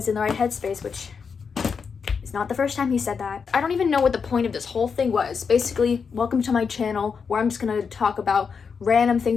in the right headspace, which is not the first time he said that. I don't even know what the point of this whole thing was. Basically, welcome to my channel where I'm just going to talk about random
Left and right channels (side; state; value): right; quieter; 5.9 dB